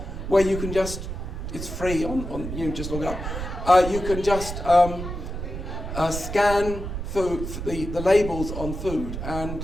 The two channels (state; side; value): noise; right; rumble, 6 dB below the sound